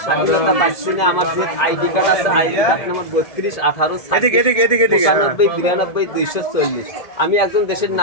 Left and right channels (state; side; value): late; right; 1.7 ms